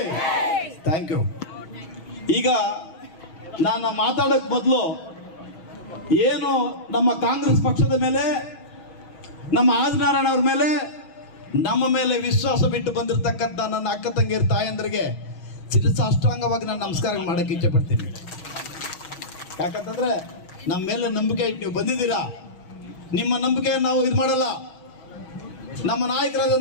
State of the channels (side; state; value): right; late; 6.3 ms